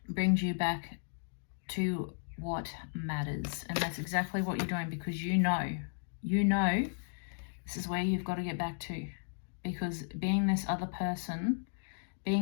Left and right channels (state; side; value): silent; right; digital silence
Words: brings you back to what matters. And that's exactly what you're doing, because you know this is where you've got to get back to. Because being this other person,